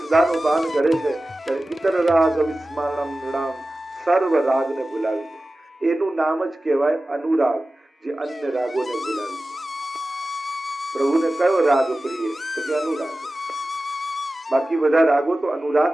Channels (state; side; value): normal; both; correlation 0.96